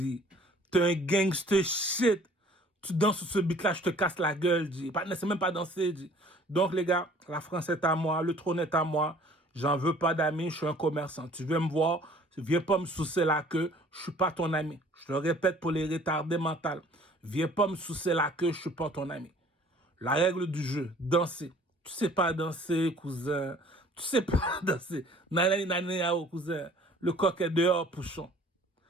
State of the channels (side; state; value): both; normal; correlation 0.53